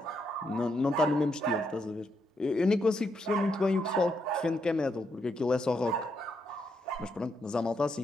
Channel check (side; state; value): both; normal; correlation 0.79